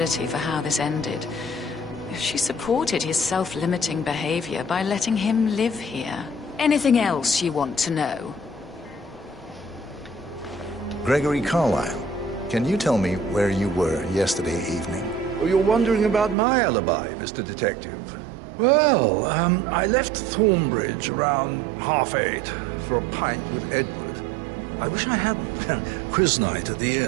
for how this ended. She supported his self-limiting behavior by letting him live here. Anything else you want to know? Gregory Carlyle, can you tell me where you were yesterday evening? Oh, you're wondering about my alibi, Mr. Detective. Well, I left Thornbridge around 8:30 for a pint with Edward. I wish I hadn't. Quiz night at the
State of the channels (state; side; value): drops out; left; at 16.4 s